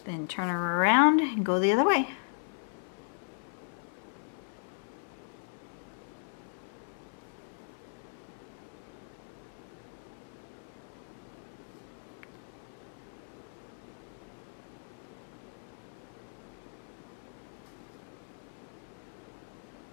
Then turn her around and go the other way.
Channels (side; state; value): right; silent; 53 dB below the other